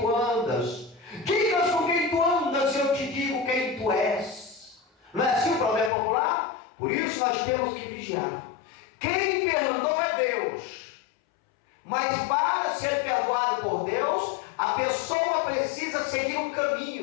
andas. Digas com quem tu andas e eu te digo quem tu és. Não é assim o provérbio popular? Por isso nós temos que vigiar. Quem perdoa é Deus. Mas para ser perdoado por Deus, a pessoa precisa seguir um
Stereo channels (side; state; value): right; drops out; at 5.9 s